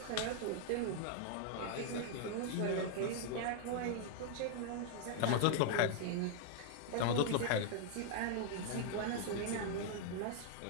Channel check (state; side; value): different; both; correlation 0.00